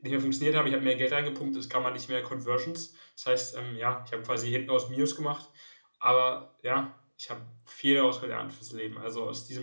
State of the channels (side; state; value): both; inverted; correlation -1.00